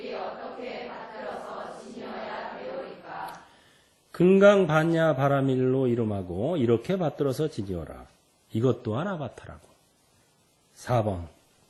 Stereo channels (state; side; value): identical; both; correlation 1.00